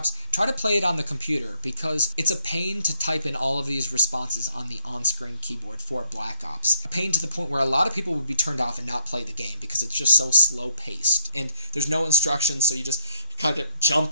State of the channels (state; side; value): inverted; both; correlation -0.69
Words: try to play it on the computer, because it's a pain to type in all of these responses on the on-screen keyboard for Black Ops. A pain to the point where a lot of people would be turned off and not play the game because it's just so slow-paced, and there's no instructions, so you just kind of jump